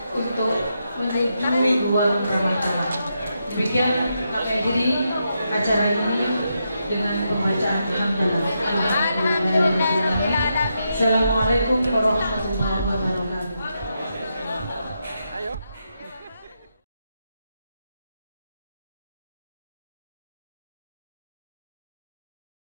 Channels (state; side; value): inverted; both; correlation -0.83